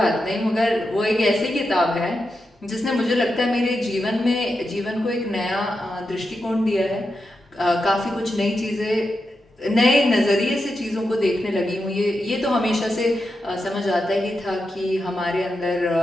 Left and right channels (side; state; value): both; normal; correlation 0.88